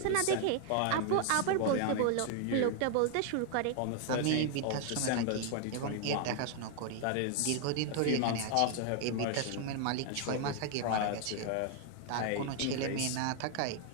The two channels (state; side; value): different; both; correlation 0.00